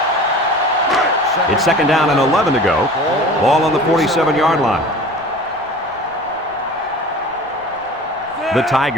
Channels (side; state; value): right; noise; rumble, 26 dB below the sound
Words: It's 2nd down and 11 to go. Ball on the 47-yard line. The